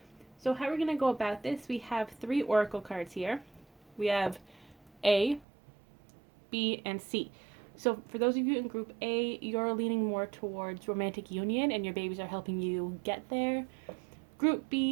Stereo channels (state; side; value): drops out; left; at 5.5 s